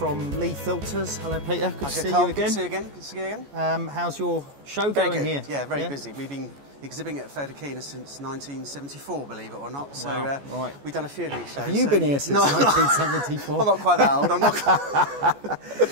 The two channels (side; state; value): left; late; 14 ms